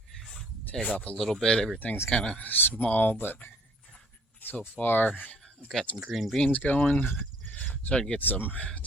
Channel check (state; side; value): normal; both; correlation 0.59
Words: take off a little bit. Everything's kind of small, but so far I've got some green beans going. Starting to get some